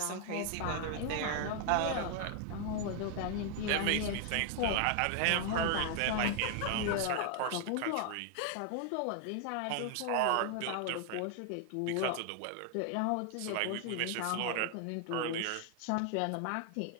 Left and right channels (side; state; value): both; different; correlation 0.00